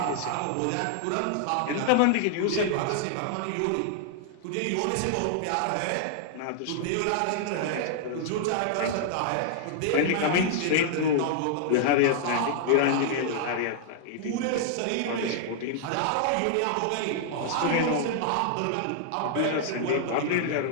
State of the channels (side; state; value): both; different; correlation -0.01